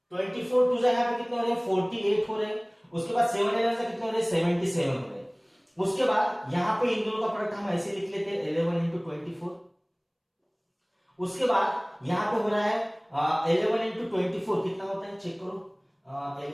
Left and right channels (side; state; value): both; identical; correlation 1.00